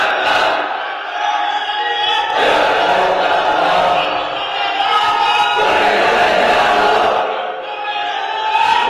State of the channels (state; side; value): identical; both; correlation 1.00